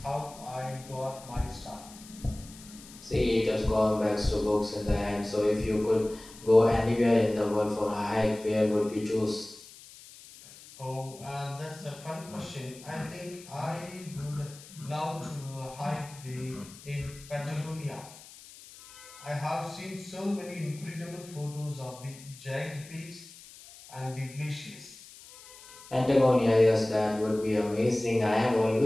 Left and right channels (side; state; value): left; noise; hiss, 19 dB below the sound